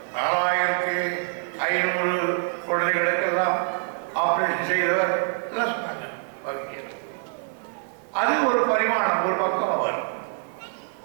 4500 குழந்தைகளுக்கெல்லாம் ஆப்ரேஷன் செய்தவர் எல்லாம் சொன்னாங்க. அது ஒரு பரிமாணம், ஒரு பக்கம். அவர்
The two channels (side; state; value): left; silent; 57 dB below the other